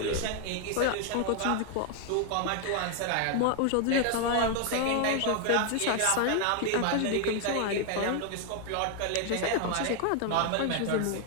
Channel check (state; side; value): different; both; correlation 0.01